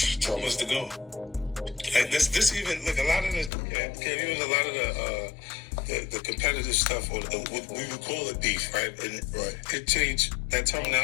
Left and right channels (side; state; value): right; drops out; at 3.5 s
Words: What's the goal? Like this even look a lot of the competitive stuff, or what we would call it beef, right? And it changed. That